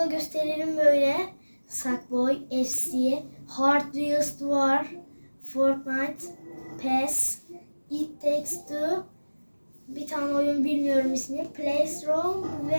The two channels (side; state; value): both; inverted; correlation -1.00